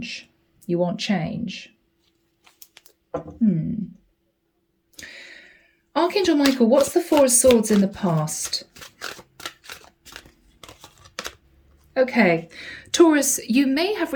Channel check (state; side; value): identical; both; correlation 1.00